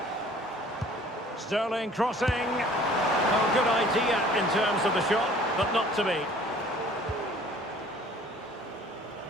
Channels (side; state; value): both; normal; correlation 0.52